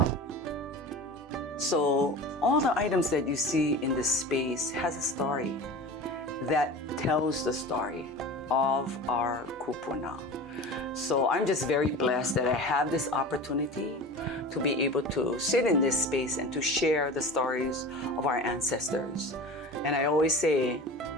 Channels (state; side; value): normal; both; correlation 0.34